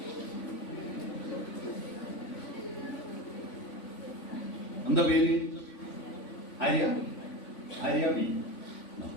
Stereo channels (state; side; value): late; right; 3.5 ms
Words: എന്താ പേര്? ആര്യ? ആര്യ ബി.